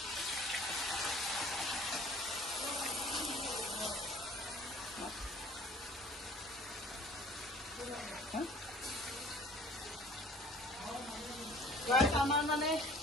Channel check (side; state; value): both; normal; correlation 0.50